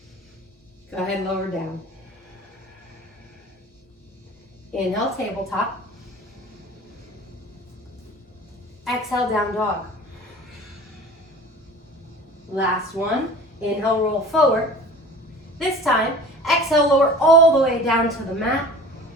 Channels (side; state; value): both; normal; correlation 0.42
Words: Go ahead, lower down. Inhale, tabletop. Exhale, down dog. Last one. Inhale, roll forward. This time, exhale, lower all the way down to the mat.